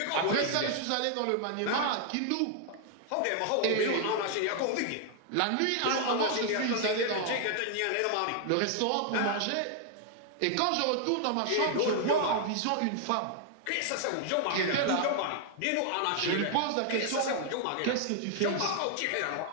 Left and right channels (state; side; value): different; both; correlation 0.00